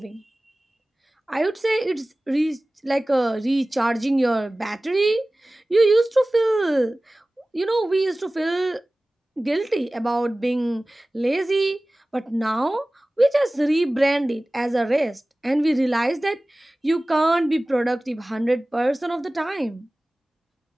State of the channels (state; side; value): normal; both; correlation 0.98